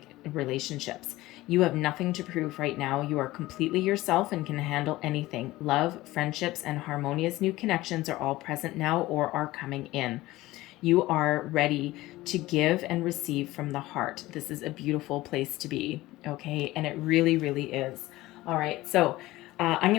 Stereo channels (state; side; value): quieter; right; 17.8 dB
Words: relationships. You have nothing to prove right now. You are completely yourself and can handle anything. Love, friendships, and harmonious new connections are all present now or are coming in. You are ready to give and receive from the heart. This is a beautiful place to be, okay? And it really, really is. All right, so I'm